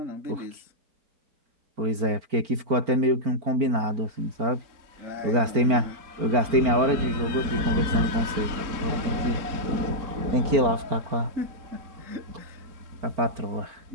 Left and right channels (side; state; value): left; late; 4.4 ms